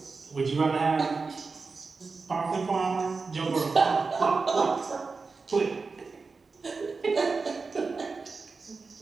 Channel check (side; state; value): left; quieter; 4.4 dB